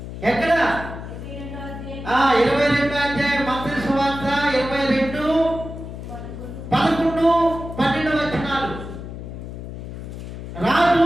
ఎక్కడ? 22వ అధ్యాయం మత్తయి సువార్త 22:11-12 వచనాలు. రాజు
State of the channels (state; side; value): noise; left; hum, 10 dB below the sound